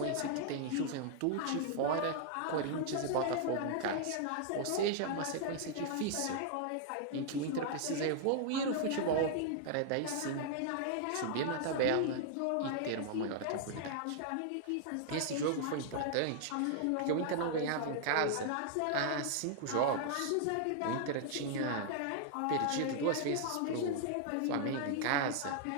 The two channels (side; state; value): both; different; correlation -0.01